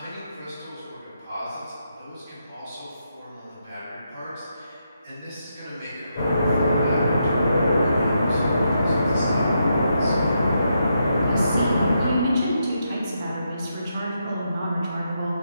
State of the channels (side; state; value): both; inverted; correlation -0.81